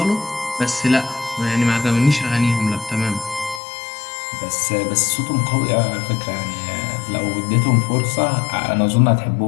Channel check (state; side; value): drops out; right; at 3.6 s